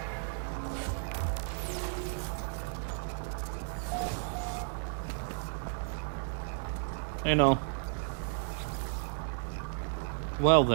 Hey, Null. Well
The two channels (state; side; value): silent; left; digital silence